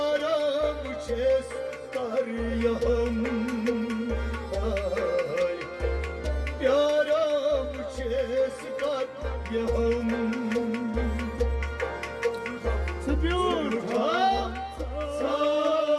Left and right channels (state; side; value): identical; both; correlation 1.00